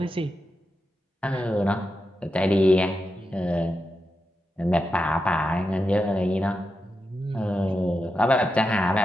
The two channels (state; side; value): normal; both; correlation 0.88